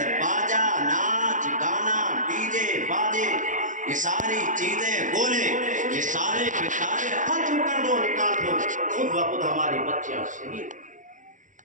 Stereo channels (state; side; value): late; left; 0.37 ms